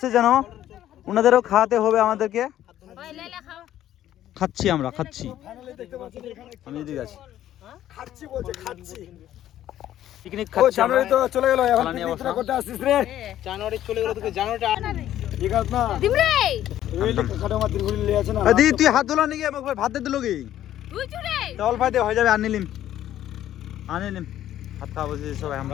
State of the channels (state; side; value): quieter; right; 12.2 dB